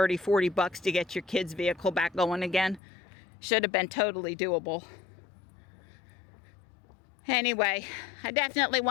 40 bucks to get your kid's vehicle back going again. Should have been totally doable. Anyway, I definitely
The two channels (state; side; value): drops out; right; at 2.8 s